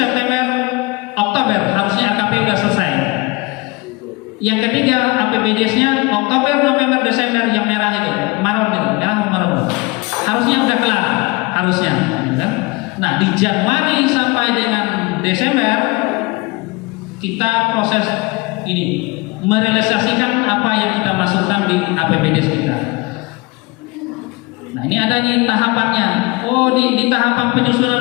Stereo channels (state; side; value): quieter; right; 24.9 dB